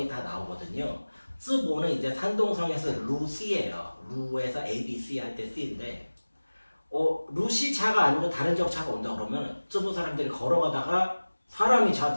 다 나오거든요. 쯔보는 이제 산동성에서 루시예요. 루에서 ABC 할 때 C인데 루시 차가 아니고 다른 지역 차가 온다 그러면 쯔보 사람들이 걸어가다가 사람이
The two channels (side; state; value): both; inverted; correlation -1.00